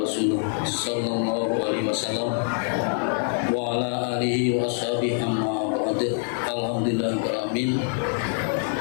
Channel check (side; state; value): right; silent; 62 dB below the other